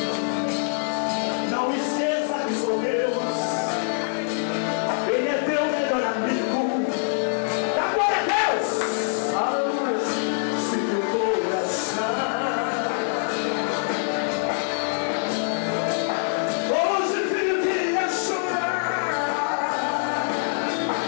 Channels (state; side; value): silent; right; 61 dB below the other